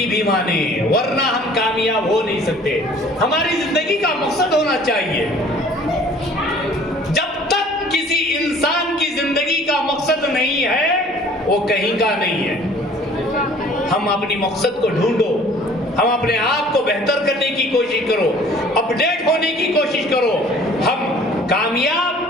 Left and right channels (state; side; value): normal; both; correlation 0.52